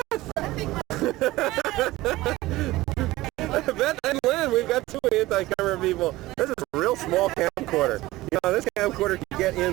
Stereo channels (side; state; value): left; quieter; 18.1 dB